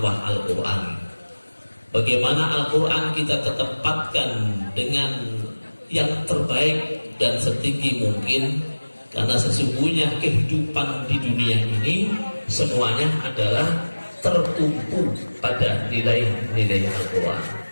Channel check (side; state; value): both; inverted; correlation -1.00